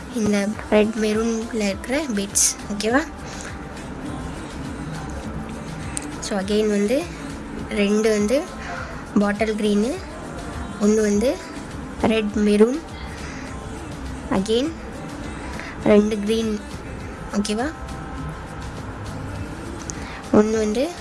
இந்த ரெட் மெரூனில் இருக்கிற பீட்ஸ். ஓகேவா? ஸோ அகெயின் வந்து 2 வந்து பாட்டில் க்ரீனு, ஒன்று வந்து ரெட் மெரூன், அகெயின் 2 க்ரீன். ஓகேவா? ஒன்று வந்து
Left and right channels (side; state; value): both; identical; correlation 1.00